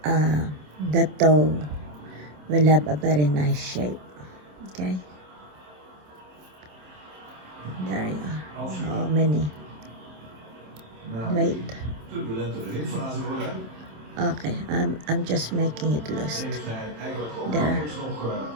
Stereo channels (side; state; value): left; late; 27 ms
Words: the toe will have a very nice shape, okay? There you are. How many? Wait. Okay, I'm just making it loose. There.